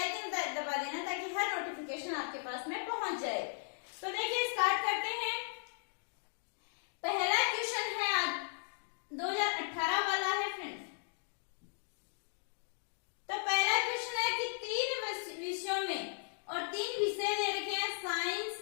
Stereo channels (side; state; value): right; silent; digital silence